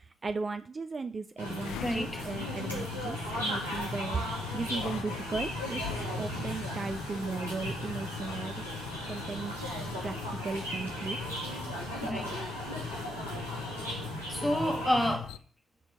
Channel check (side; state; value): both; normal; correlation 0.74